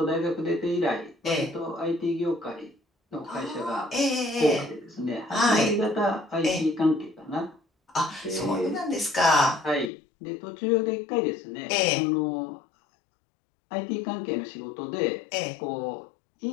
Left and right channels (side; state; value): right; drops out; at 9.9 s